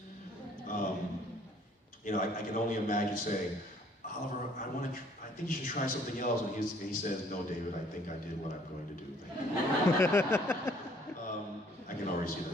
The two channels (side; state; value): both; normal; correlation 0.59